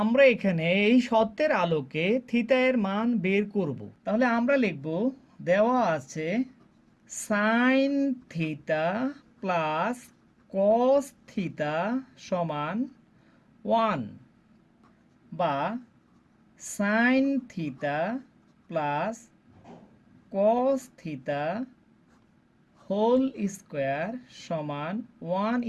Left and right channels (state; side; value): identical; both; correlation 1.00